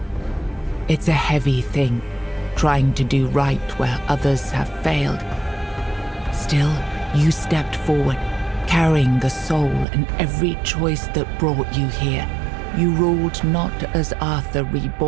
It's a heavy thing, trying to do right where others have failed. Still, you stepped forward, carrying the soul and every choice that brought you here. You ruled not as Arthur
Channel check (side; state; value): left; drops out; at 9.9 s